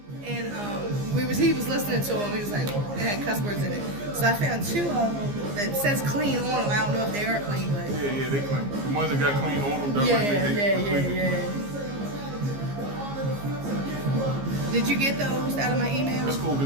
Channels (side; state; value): left; late; 15 ms